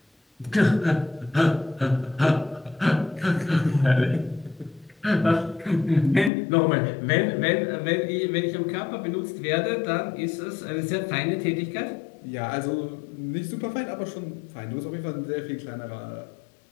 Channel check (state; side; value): drops out; right; at 6.3 s